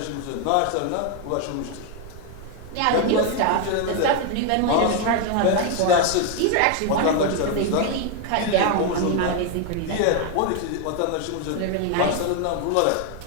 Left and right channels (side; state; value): both; different; correlation 0.01